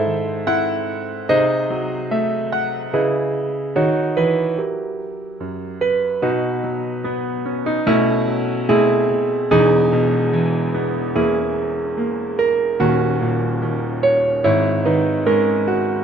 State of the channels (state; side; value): normal; both; correlation 0.69